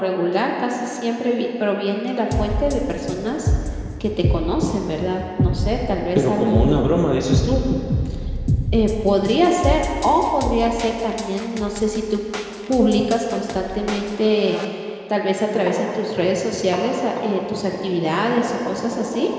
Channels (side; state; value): both; identical; correlation 1.00